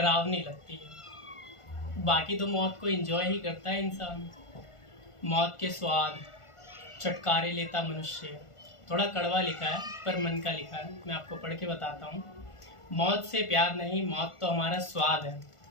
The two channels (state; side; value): late; right; 1.4 ms